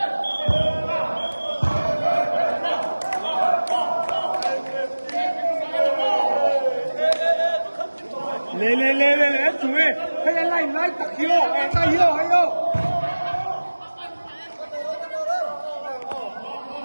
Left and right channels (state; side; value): inverted; both; correlation -1.00